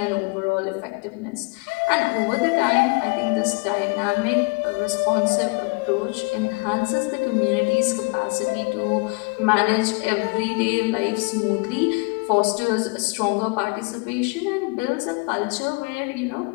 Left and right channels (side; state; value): right; quieter; 29.4 dB